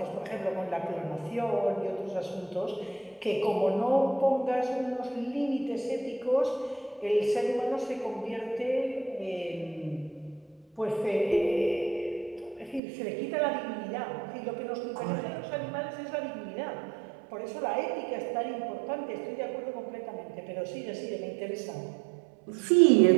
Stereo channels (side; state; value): left; drops out; at 12.8 s